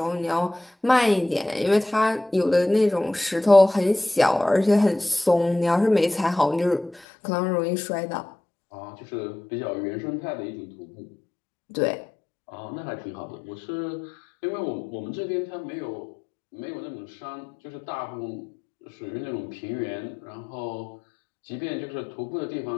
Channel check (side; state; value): right; drops out; at 7.1 s